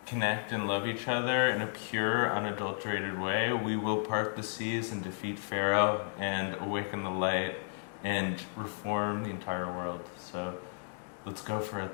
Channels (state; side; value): silent; right; digital silence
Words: connect and love each other in a pure, unadulterated way, we will part the seas and defeat Pharaoh and awaken the light and reform the entire world. So let's go for